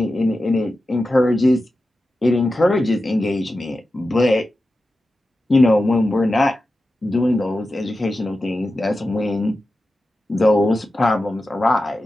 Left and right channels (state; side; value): normal; both; correlation 0.92